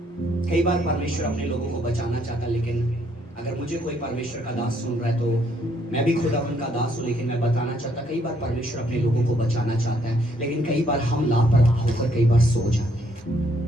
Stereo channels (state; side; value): normal; both; correlation 0.69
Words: कई बार परमेश्वर अपने लोगों को बचाना चाहता, लेकिन अगर मुझे कोई परमेश्वर का दास सुन रहा है तो मैं भी खुदा उनका दास हूं, लेकिन मैं बताना चाहता, कई बार परमेश्वर अपने लोगों को बचाना चाहता है, लेकिन कई बार हम लापरवाह होकर कई बार सो जाते हैं।